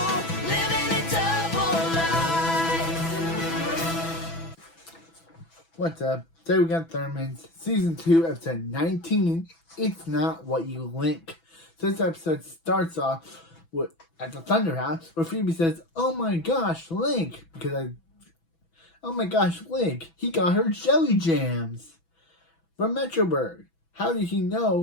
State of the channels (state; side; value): late; right; 6.0 ms